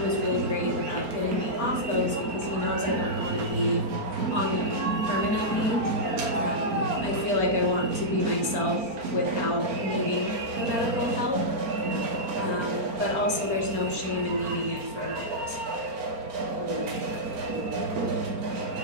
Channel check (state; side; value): late; left; 4.4 ms